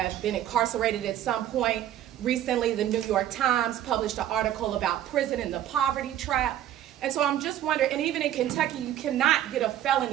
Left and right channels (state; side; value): quieter; left; 11.8 dB